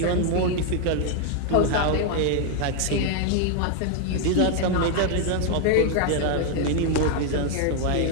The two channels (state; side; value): different; both; correlation 0.00